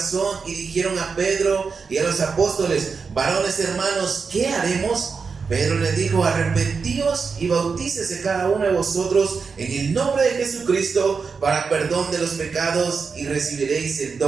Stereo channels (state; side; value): quieter; left; 5.2 dB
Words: y dijeron a Pedro y a los apóstoles: varones hermanos, ¿qué haremos? Pedro les dijo: arrepentíos y bautícese cada uno de vosotros en el nombre de Jesucristo para perdón de los pecados, y recibiréis el